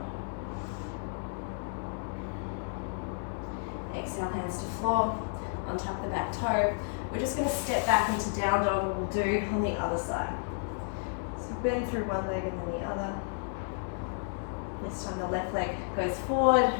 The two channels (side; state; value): right; silent; digital silence